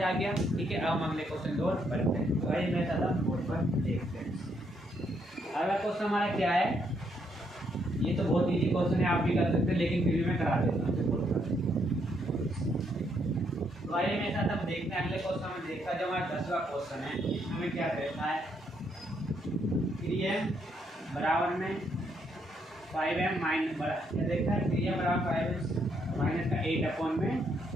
आ गया, ठीक है। अब हम अगले क्वेश्चन की ओर बढ़ते हैं। तो आइए मैं सादा बोर्ड पर देखते हैं। अगला क्वेश्चन हमारा क्या है, ये तो बहुत इजी क्वेश्चन है, आप भी कर सकते हैं, लेकिन फिर भी मैं करा देता हूँ। तो आइए मेरे साथ अब देखते हैं अगले क्वेश्चन में। देखा जो हमारा 10वां क्वेश्चन है, इसमें क्या कहता है, 3m बराबर में 5m माइनस क्या देखता है, 3m बराबर 5m माइनस का 8 में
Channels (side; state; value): both; normal; correlation 0.74